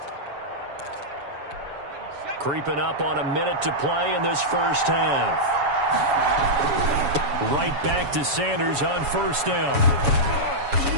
Creeping up on a minute to play in this first half. Right back to Sanders on 1st down.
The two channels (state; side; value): late; left; 7.1 ms